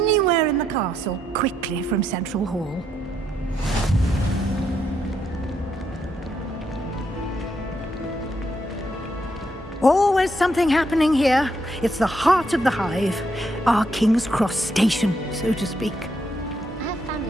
in the castle quickly from Central Hall. Always something happening here. It's the heart of the Hive. Our King's Cross station, so to speak. I have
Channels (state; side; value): normal; both; correlation 0.77